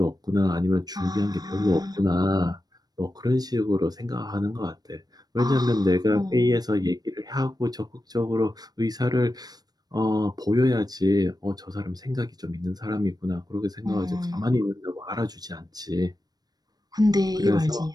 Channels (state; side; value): late; left; 0.19 ms